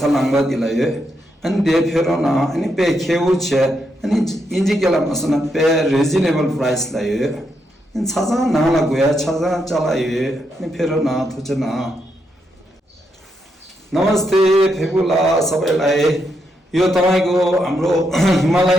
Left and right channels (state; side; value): normal; both; correlation 0.81